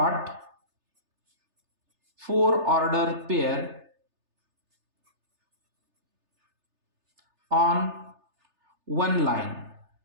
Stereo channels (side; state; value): left; late; 3.3 ms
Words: 4 order pair on 1 line.